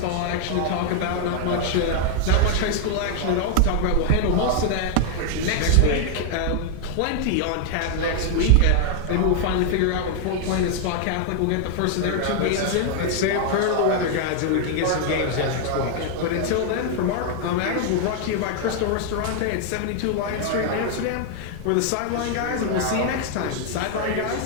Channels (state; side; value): different; both; correlation 0.00